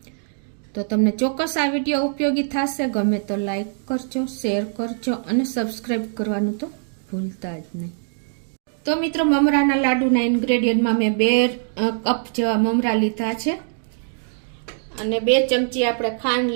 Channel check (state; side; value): silent; left; digital silence